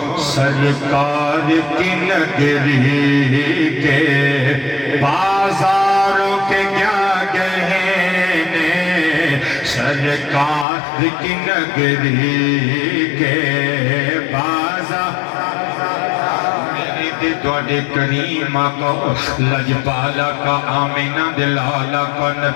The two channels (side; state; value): right; drops out; at 10.7 s